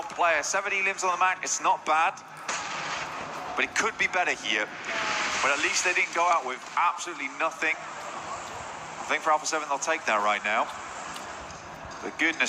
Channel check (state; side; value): identical; both; correlation 1.00